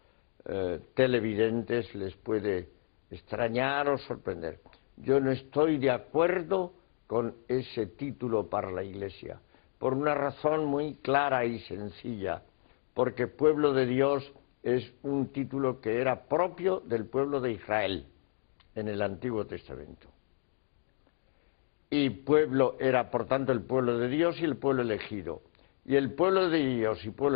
televidentes les puede extrañar o sorprender. Yo no estoy de acuerdo con ese título para la Iglesia, por una razón muy clara y sencilla, porque pueblo de Dios es un título que era propio del pueblo de Israel en el Antiguo Testamento. Y pueblo era, por tanto, el pueblo de Dios y el pueblo elegido. Y el pueblo de Dios y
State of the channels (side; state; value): right; silent; 57 dB below the other